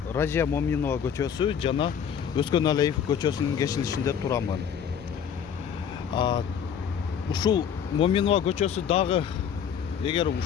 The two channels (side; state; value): right; quieter; 8.0 dB